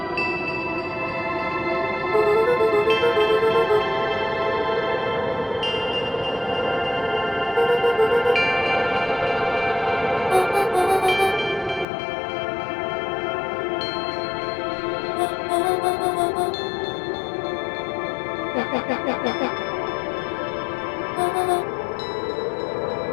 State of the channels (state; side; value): drops out; right; at 11.9 s